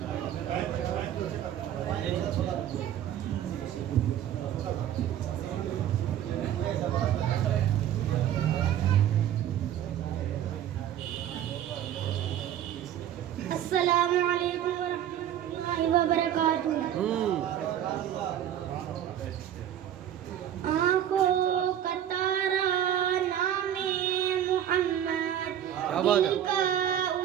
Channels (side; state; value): left; quieter; 10.7 dB